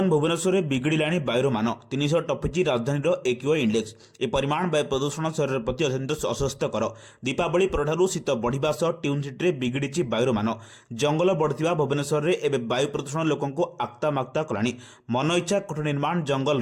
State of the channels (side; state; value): both; identical; correlation 1.00